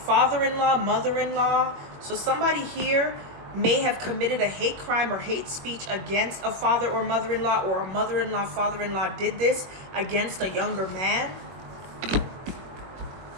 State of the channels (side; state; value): left; late; 21 ms